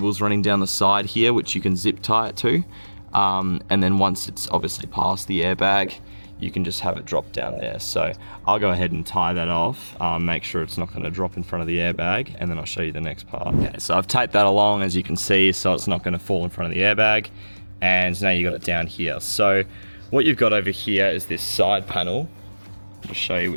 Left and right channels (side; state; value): both; inverted; correlation -1.00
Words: running down the side here which you can zip tie it to, and then once it's obviously past the airbag, you can just have it drop down there. So I'll go ahead and tie that off, make sure it's not going to drop in front of the airbag, and then I'll show you the next part. Okay, so I've taped that along, as you can see, so it's not going to fall in front of the airbag, and now you got it down here. So what you've got over here is this side panel, I'll show you,